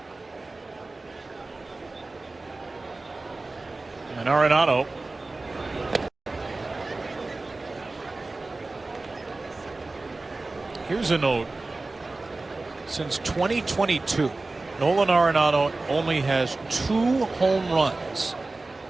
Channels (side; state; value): left; quieter; 3.3 dB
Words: And Arenado here's a note. Since 2022, Nolan Arenado only has 2 home runs